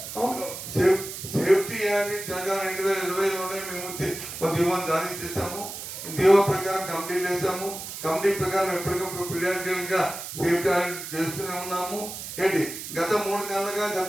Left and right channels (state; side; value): noise; right; hiss, 9 dB below the sound